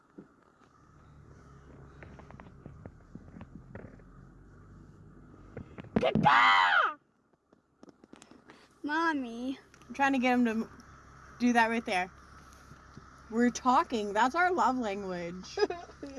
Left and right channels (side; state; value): both; identical; correlation 1.00